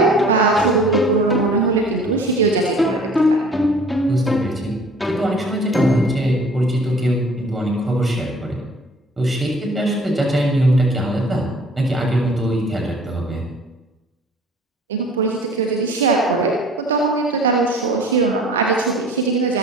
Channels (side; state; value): both; normal; correlation 0.50